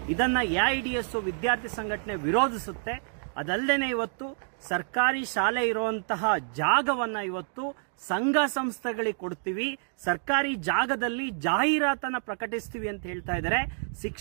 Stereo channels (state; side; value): silent; left; 59 dB below the other